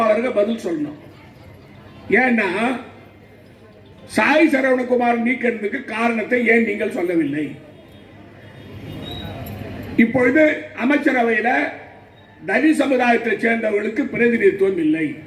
பதில் சொல்லணும். ஏன்னா சாய் சரவணகுமார் நீக்கிறதுக்கு காரணத்தை ஏன் நீங்கள் சொல்லவில்லை? இப்பொழுது அமைச்சரவையில் தனி சமுதாயத்தை சேர்ந்தவர்களுக்கு பிரதிநிதித்துவம் இல்லை.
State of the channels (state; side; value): identical; both; correlation 1.00